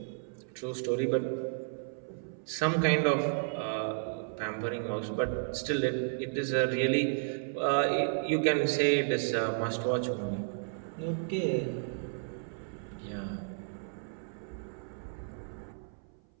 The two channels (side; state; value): left; silent; 56 dB below the other